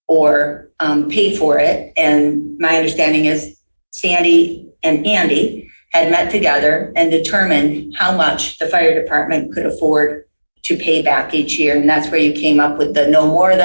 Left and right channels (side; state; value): both; inverted; correlation -1.00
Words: or pay for it. And my understanding is Sandy and Andy had met together and determined how much the fire department could afford to pay back each year. And that's where you came up with the no more